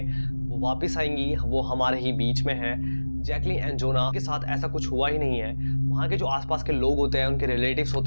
वो वापस आएंगी, वो हमारे ही बीच में हैं। जैकलीन एंड जोना के साथ ऐसा कुछ हुआ ही नहीं है। वहाँ के जो आसपास के लोग होते हैं, उनके रिलेटिव्स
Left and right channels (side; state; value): both; inverted; correlation -1.00